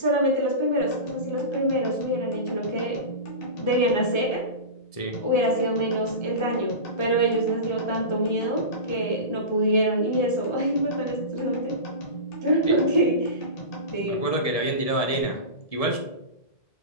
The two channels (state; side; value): late; right; 1.7 ms